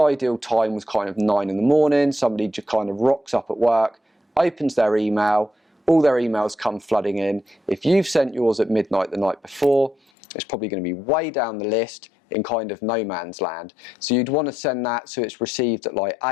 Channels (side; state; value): right; drops out; at 10.0 s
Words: time was kind of 9 in the morning, somebody just kind of rocks up at work, opens their email, all their emails come flooding in. If you've sent yours at midnight the night before, it's probably going to be way down the list in kind of no man's land. So you'd want to send that so it's received at like